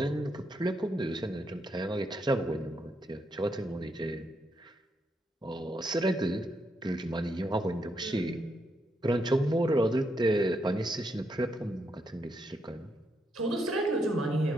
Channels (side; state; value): both; normal; correlation 0.79